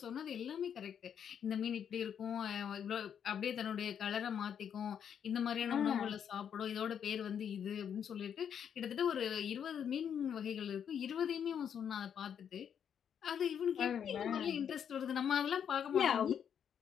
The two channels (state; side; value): quieter; right; 8.3 dB